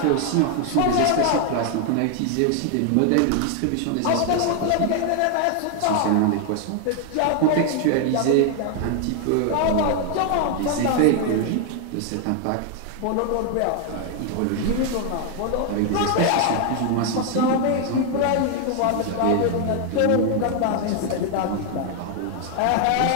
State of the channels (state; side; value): different; both; correlation 0.00